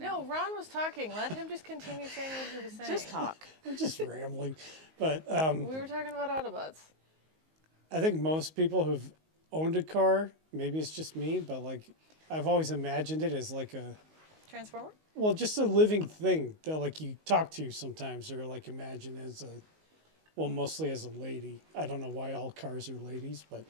No, Ron was talking. Let him just continue saying what he was saying. Just talk. I'm just rambling. But We were talking about Autobots. I think most people who've owned a car, maybe it's just me, but like I've always imagined it as like a, Transformer? well, just a living thing that like you talk to sometimes, or like imagine as a, well, mostly as a lady. I don't know why all cars are ladies, but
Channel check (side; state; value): left; late; 19 ms